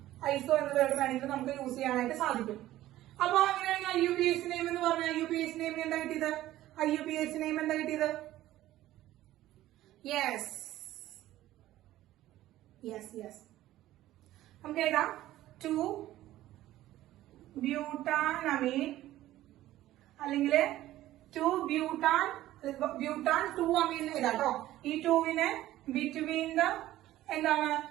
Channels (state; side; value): quieter; left; 14.7 dB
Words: ഐസോ എന്ന വേർഡ് വേണമെങ്കിൽ നമുക്ക് യൂസ് ചെയ്യാനായിട്ട് സാധിക്കും. അപ്പൊ അങ്ങനെയാണെങ്കിൽ IUPAC നെയിം എന്ന് പറഞ്ഞാൽ IUPAC നെയിം എന്താ കിട്ടിയത്? IUPAC നെയിം എന്താ കിട്ടിയത്? Yes, yes, yes. നമുക്ക് എഴുതാം 2 ബ്യൂട്ടാനമീൻ അല്ലെങ്കിൽ 2 ബ്യൂട്ടാൻ 2 അമീൻ എഴുതാം കേട്ടോ. ഈ 2വിനെ ബിറ്റ്വീൻ ദ എന്താണ്